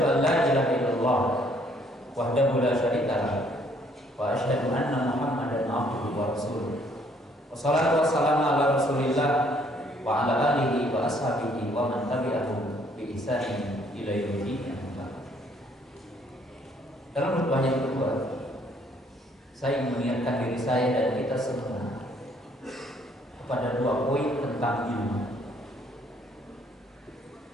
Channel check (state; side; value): normal; both; correlation 0.64